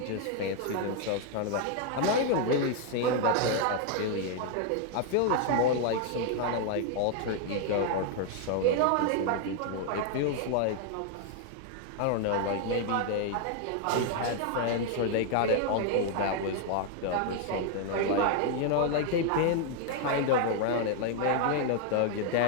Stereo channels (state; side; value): different; both; correlation 0.00